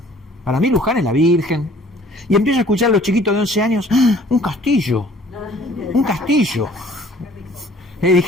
Para mí Luján es la Virgen. Y empiezo a escuchar a los chiquitos de 11 años, ¡ah, un castillo! ¡Un castillo! Y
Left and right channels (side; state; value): both; normal; correlation 0.54